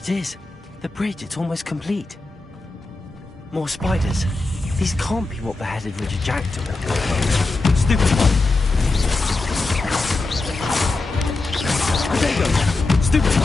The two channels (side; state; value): right; quieter; 3.3 dB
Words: is. The bridge, it's almost complete. More spiders. These can't be what beheaded Richard Jackdaw. Stupid one. There you go. Stupid